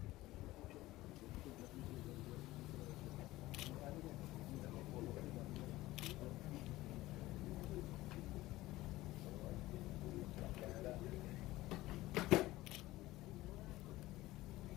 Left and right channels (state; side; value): quieter; right; 17.7 dB